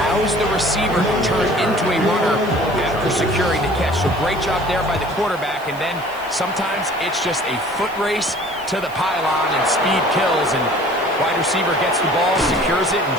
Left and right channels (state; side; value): noise; right; hiss, 22 dB below the sound